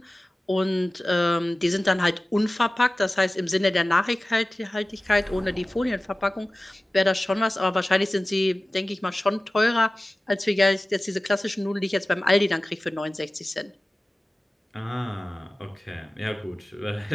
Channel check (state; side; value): normal; both; correlation 0.97